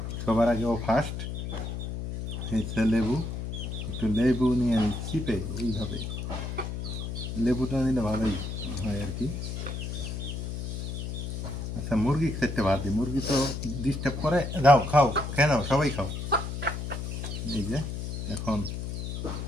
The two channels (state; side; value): noise; left; hum, 5 dB below the sound